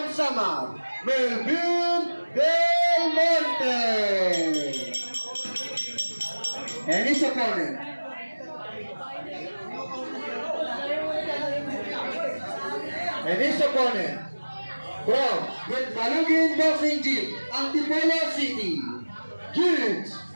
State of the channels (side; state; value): both; inverted; correlation -1.00